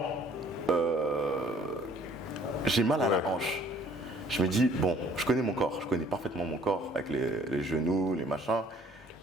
j'ai mal à la hanche. Je me dis, bon, je connais mon corps, je connais parfaitement mon corps, avec les genoux, les machins.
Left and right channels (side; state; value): both; normal; correlation 0.58